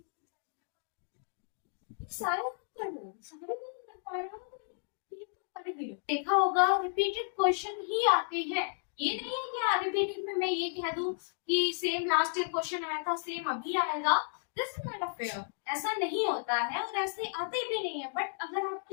सारे कर लो, सारे नहीं कर पा रहे हो तो देखा होगा रिपीटेड क्वेश्चन ही आते हैं। ये नहीं है कि रिपीटेड में मैं ये कह दूं कि सेम लास्ट ईयर क्वेश्चन आया था सेम अभी आएगा, this is not a fair, ऐसा नहीं होता है और ऐसे आते भी नहीं है। बट अगर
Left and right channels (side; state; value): right; silent; digital silence